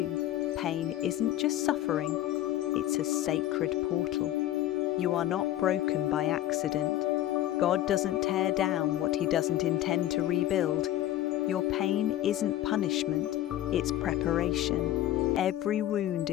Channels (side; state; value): right; quieter; 13.6 dB